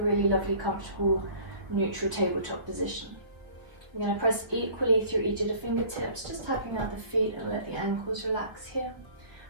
really lovely, comfortable, neutral tabletop position. I'm going to press equally through each of the fingertips, just tapping out the feet and let the ankles relax here.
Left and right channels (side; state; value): left; late; 1.6 ms